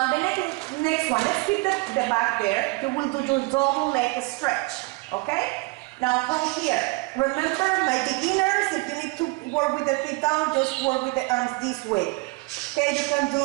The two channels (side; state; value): left; quieter; 25.8 dB